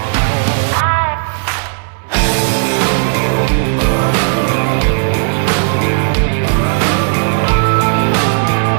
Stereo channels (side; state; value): left; silent; digital silence